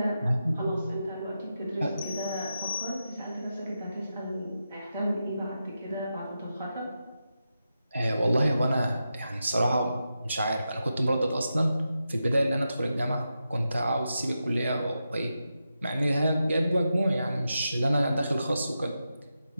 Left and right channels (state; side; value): inverted; both; correlation -0.88